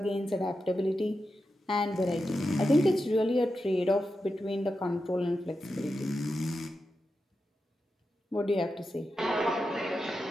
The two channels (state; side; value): normal; both; correlation 0.89